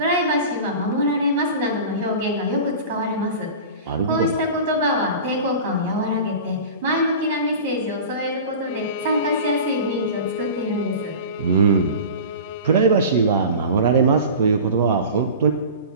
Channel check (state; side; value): inverted; both; correlation -0.35